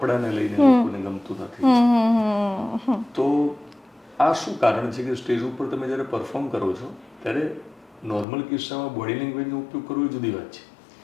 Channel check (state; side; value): drops out; right; at 8.2 s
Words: લઈને લોકોને ગમતું નથી. તો આ શું કારણ છે કે સ્ટેજ ઉપર તમે જ્યારે પરફોર્મ કરો છો ત્યારે નોર્મલ કિસ્સામાં બોડી લેંગ્વેજનો ઉપયોગ કરવો એ જુદી વાત છે.